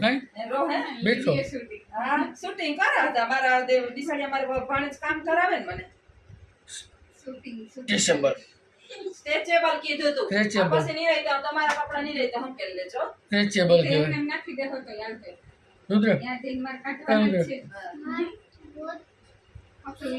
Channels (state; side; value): identical; both; correlation 1.00